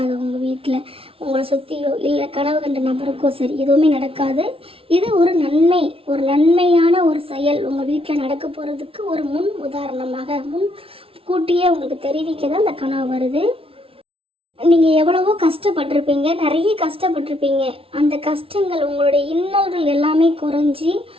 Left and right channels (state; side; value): late; left; 0.26 ms